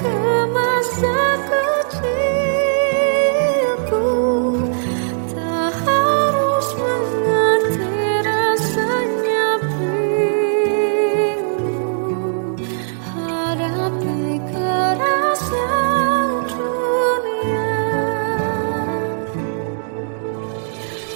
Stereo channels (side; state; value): left; silent; digital silence